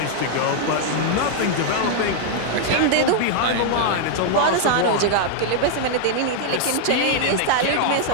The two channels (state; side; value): different; both; correlation 0.00